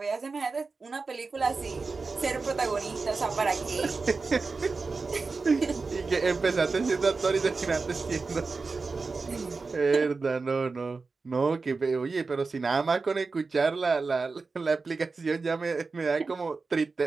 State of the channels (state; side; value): quieter; left; 4.2 dB